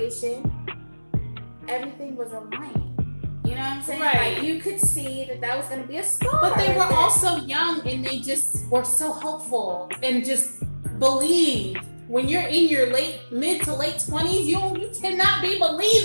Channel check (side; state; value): both; inverted; correlation -1.00